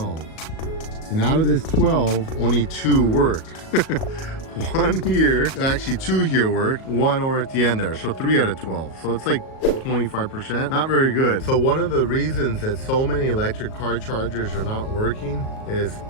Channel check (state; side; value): late; right; 38 ms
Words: And out of this 12, only 2 work. 1 here, actually 2 here work, 1 over at the end there. So 3 out of 12. So it's like 25%, not very good. So one of the reasons that so many electric car chargers are not working is